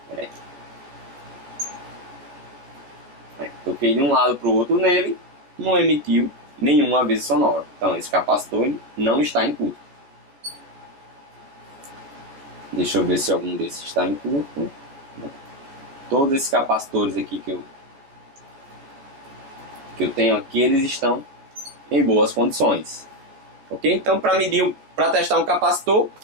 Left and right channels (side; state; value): left; late; 14 ms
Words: Peraí. Toquei de um lado para o outro nele, não emitiu nenhum aviso sonoro. Então, esse capacitor ele não está em curto. Deixa eu ver se algum desses está em curto. Todos esses capacitores aqui que eu tenho aqui, eles estão em boas condições. Ok? Então, para testar um capacitor,